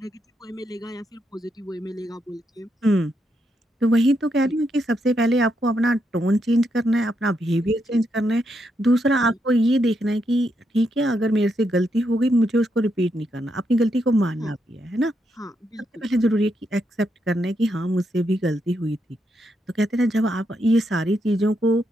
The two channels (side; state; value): both; normal; correlation 0.80